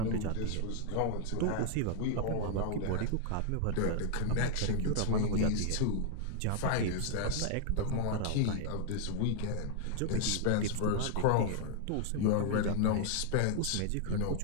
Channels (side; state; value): both; different; correlation 0.00